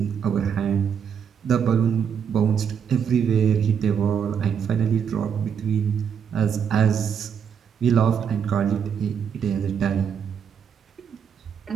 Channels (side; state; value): left; quieter; 7.5 dB